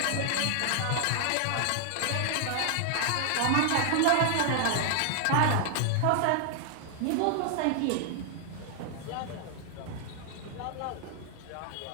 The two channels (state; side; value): different; both; correlation 0.00